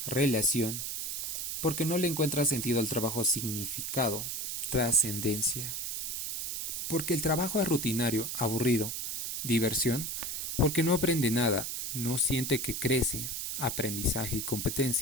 Relación. Porque no le encuentra sentido al trabajo. Significado. Trascendencia. Porque el trabajo es rutinario, aburrido. Diversión. Porque no aprende nada, no siente que crece. Aprendizaje y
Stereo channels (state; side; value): noise; right; hiss, 3 dB below the sound